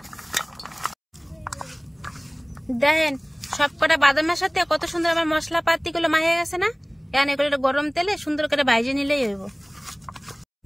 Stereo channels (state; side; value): identical; both; correlation 1.00